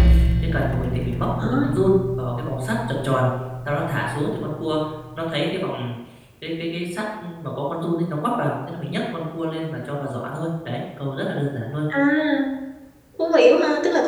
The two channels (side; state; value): both; identical; correlation 1.00